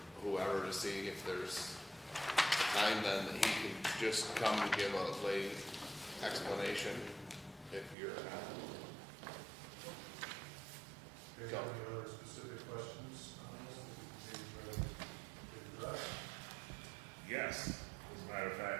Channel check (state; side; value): drops out; left; at 8.0 s